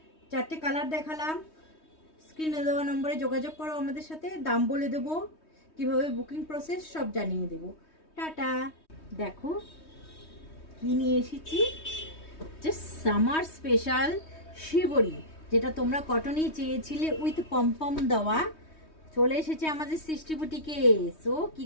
4টে কালার দেখালাম। স্ক্রিনে দেওয়া নম্বরে যোগাযোগ করো আমাদের সাথে, দাম বলে দেবো, কিভাবে বুকিং প্রসেস সব জানিয়ে দেবো। টাটা। দেখো কি নিয়ে এসেছি, জাস্ট সামার স্পেশাল শিবরি, যেটা তোমরা কটনই চেয়েছিলে উইথ পমপম দেওয়া। চলে এসেছে আমাদের সৃষ্টি বুটিকে। সো কি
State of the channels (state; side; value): late; right; 3.2 ms